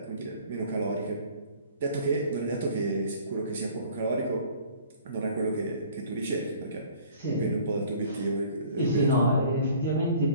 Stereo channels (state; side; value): inverted; both; correlation -0.51